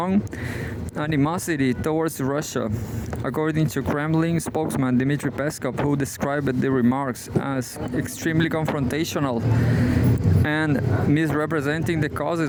animosity towards Russia, according to Kremlin spokesman Dmitry Peskov, who described the remarks as extremely confrontational and misrepresenting the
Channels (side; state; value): both; identical; correlation 1.00